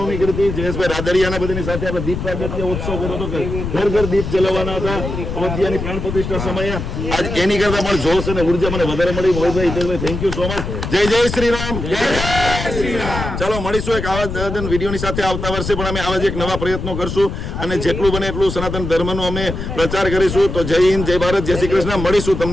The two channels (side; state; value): left; noise; rumble, 5 dB below the sound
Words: કરી હતી. જયેશભાઈ રાદડિયાના બધાની સાથે આપણે દીપ પ્રાગટ્ય ઉત્સવ કર્યો હતો કે ઘર ઘર દીપ જલાવવાના હતા અયોધ્યાની પ્રાણ પ્રતિષ્ઠા સમયે. આજ એની કરતા પણ જોશ અને ઉર્જા મને વધારે મળી. મોહિતભાઈ, હિતેશભાઈ, થેન્ક યુ સો મચ. જય જય શ્રી રામ. ચાલો મળીશું એક આવા વિડીયોની સાથે આવતા વર્ષે પણ અમે આવા જ એક નવા પ્રયત્નો કરશું અને જેટલું બને એટલું સનાતન ધર્મનો અમે પ્રચાર કરીશું. તો જય હિન્દ, જય ભારત, જય શ્રી કૃષ્ણ. મળીશું